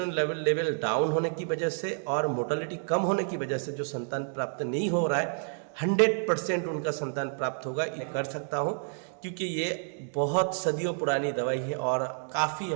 लेवल डाउन होने की वजह से और मोर्टेलिटी कम होने की वजह से जो संतान प्राप्त नहीं हो रहा है, 100% उनका संतान प्राप्त होगा, ये कर सकता हूँ, क्योंकि ये बहुत सदियों पुरानी दवाई है और काफ़ी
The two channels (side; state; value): left; silent; 58 dB below the other